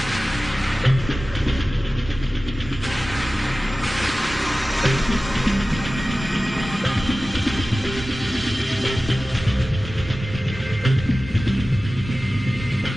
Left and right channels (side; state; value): both; normal; correlation 0.96